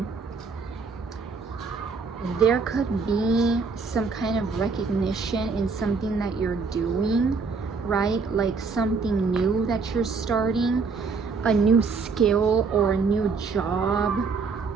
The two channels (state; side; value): quieter; left; 4.7 dB